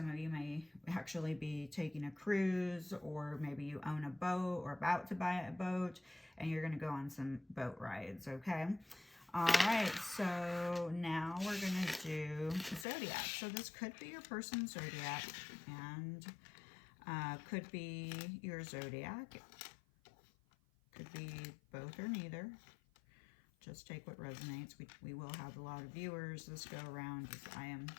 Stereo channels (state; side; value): drops out; right; at 12.9 s